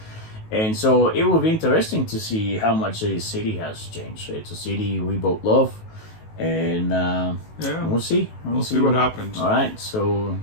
And so it will be interesting to see how much the city has changed. It's a city we both love. And we'll see. We'll see what happens. All right. So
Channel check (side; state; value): right; late; 19 ms